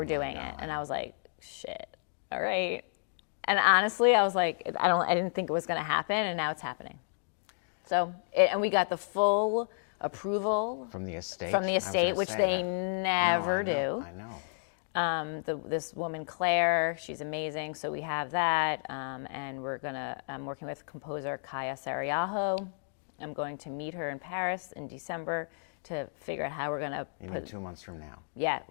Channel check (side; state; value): right; silent; digital silence